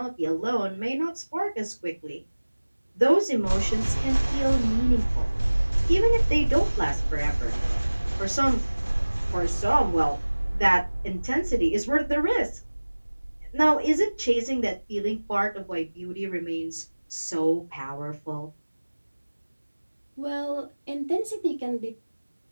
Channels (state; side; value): inverted; both; correlation -1.00